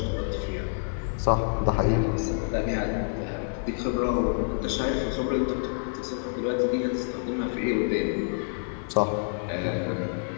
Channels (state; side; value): silent; right; 56 dB below the other